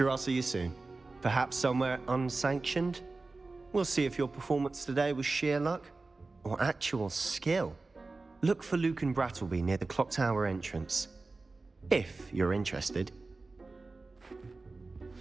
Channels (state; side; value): quieter; left; 3.6 dB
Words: I'll see you soon. Perhaps somewhere unsanctioned? We'll see if your performance today was sheer luck, or actual skill. Look for Luke and Brattleby near the clock tower entrance, if you're interested.